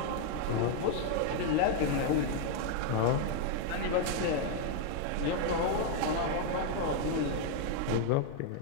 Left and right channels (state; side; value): different; both; correlation 0.00